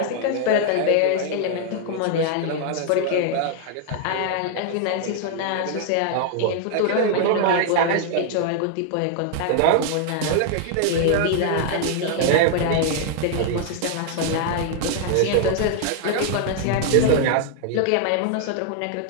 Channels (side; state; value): both; different; correlation 0.00